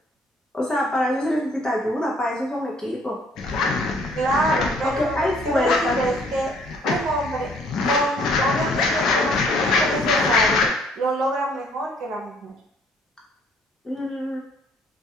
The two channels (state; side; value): normal; both; correlation 0.61